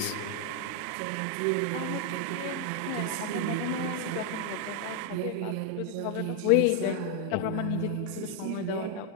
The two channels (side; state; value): both; different; correlation 0.00